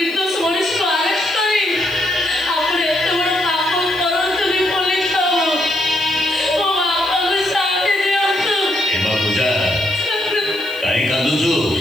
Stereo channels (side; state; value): left; noise; hiss, 23 dB below the sound